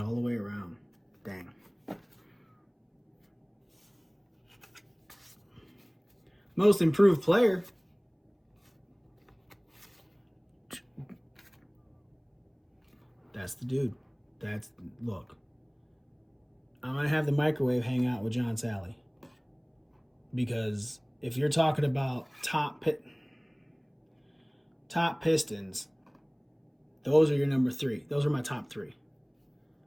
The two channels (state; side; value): identical; both; correlation 1.00